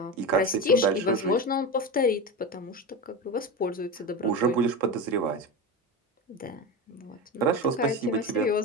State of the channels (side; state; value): both; normal; correlation 0.21